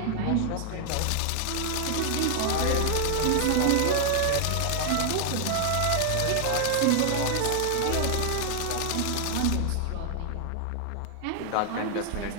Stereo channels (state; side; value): different; both; correlation 0.00